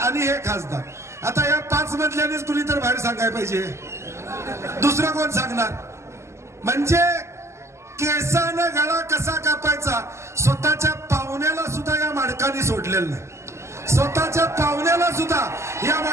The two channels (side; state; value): left; late; 0.13 ms